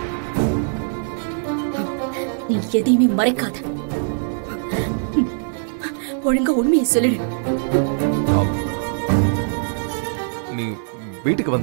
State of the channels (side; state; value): left; silent; digital silence